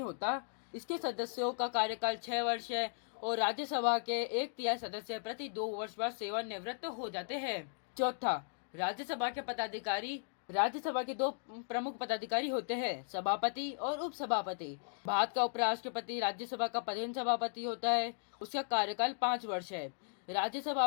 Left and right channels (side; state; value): right; silent; digital silence